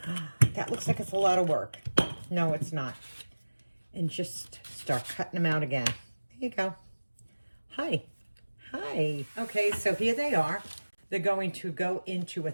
oh, that looks like it's a lot of work. No, it's not. And just start cutting them out again. There you go. Hi. Hi. Okay, so here they are. They're going to go into a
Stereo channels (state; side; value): inverted; both; correlation -1.00